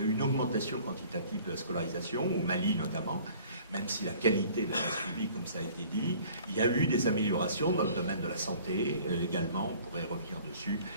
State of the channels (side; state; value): both; inverted; correlation -0.51